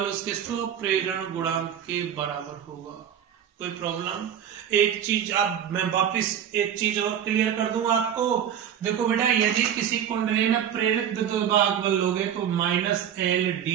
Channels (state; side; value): quieter; left; 9.3 dB